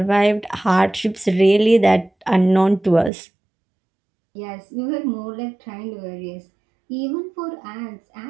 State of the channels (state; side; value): drops out; left; at 3.1 s